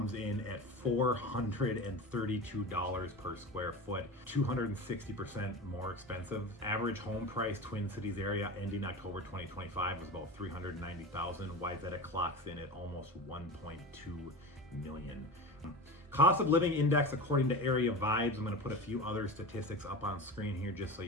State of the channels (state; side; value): normal; both; correlation 0.29